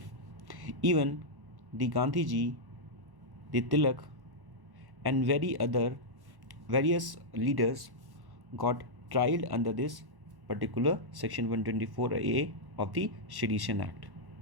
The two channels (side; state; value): left; late; 1.1 ms